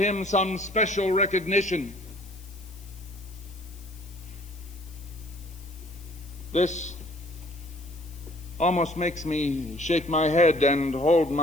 some special recognition. This almost makes me shake my head and hold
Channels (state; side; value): noise; left; hiss, 23 dB below the sound